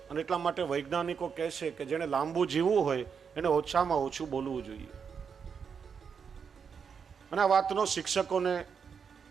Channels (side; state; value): left; quieter; 6.5 dB